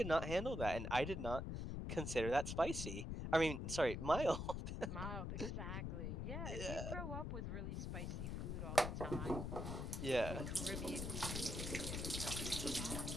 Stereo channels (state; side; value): noise; left; rumble, 3 dB below the sound